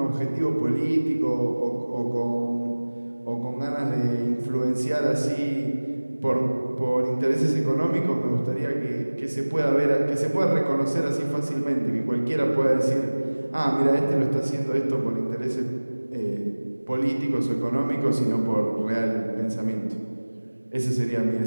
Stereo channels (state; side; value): inverted; both; correlation -1.00